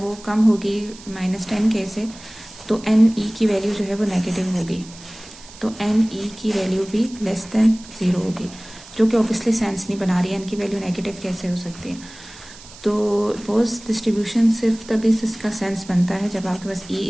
कम होगी -10K से, तो NE की वैल्यू जो है वो नेगेटिव होगी। तो NE की वैल्यू भी लेस देन 0 होगी, जो कि ऑब्वियसली सेंस नहीं बना रही है। N की वैल्यू नेगेटिव कैसे हो सकती है? तो बोस डिस्ट्रीब्यूशन सिर्फ तभी इसका सेंस बनता है जब आपके पास E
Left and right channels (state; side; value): noise; right; hiss, 19 dB below the sound